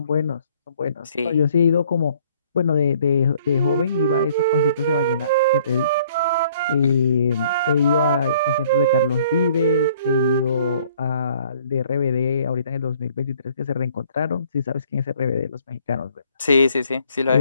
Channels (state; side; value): inverted; both; correlation -0.59